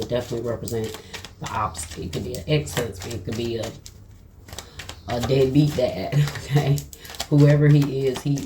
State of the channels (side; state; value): both; identical; correlation 1.00